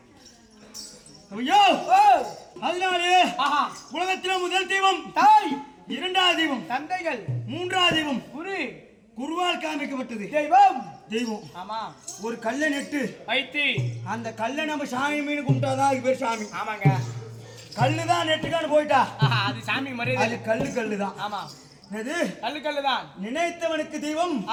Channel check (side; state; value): both; identical; correlation 1.00